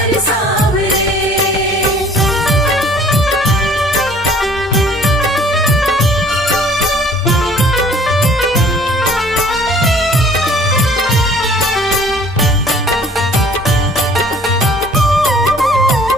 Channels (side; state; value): both; normal; correlation 0.53